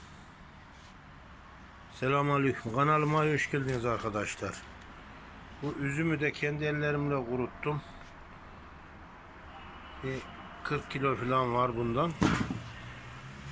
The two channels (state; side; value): identical; both; correlation 1.00